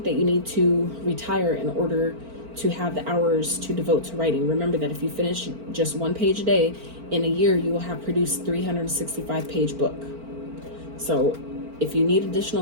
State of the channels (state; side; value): late; left; 4.4 ms